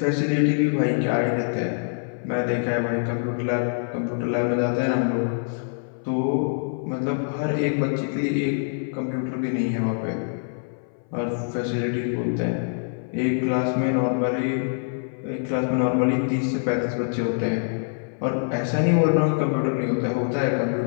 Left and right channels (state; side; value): silent; right; 59 dB below the other